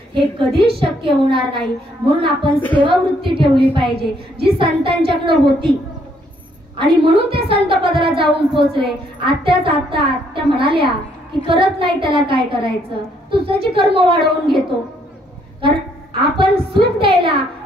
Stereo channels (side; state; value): both; normal; correlation 0.69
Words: हे कधीच शक्य होणार नाही. म्हणून आपण सेवा वृत्ती ठेवली पाहिजे, जी संतांच्याकडे होती. आणि म्हणून ते संत पदाला जाऊन पोहोचले. आत्या म्हणाल्या की करत नाही त्याला काय करायचं, तू त्याची कर्म वाढवून घेतो. कारण आपण सुख द्यायला